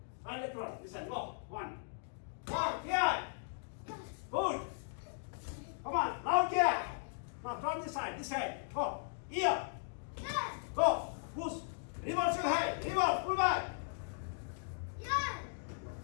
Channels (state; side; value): silent; right; digital silence